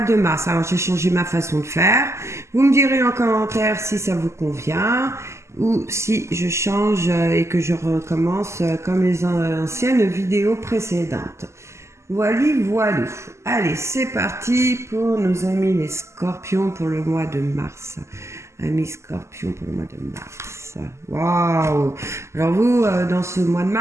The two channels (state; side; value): late; left; 0.13 ms